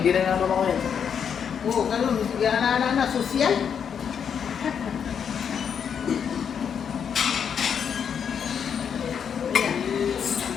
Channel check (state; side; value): quieter; right; 7.5 dB